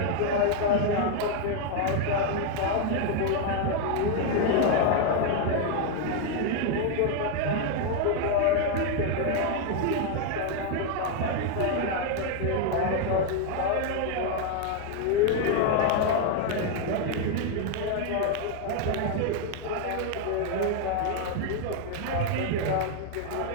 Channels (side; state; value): both; different; correlation 0.00